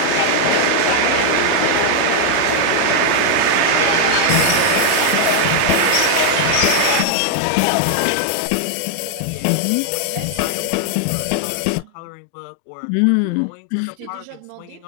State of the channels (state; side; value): different; both; correlation 0.00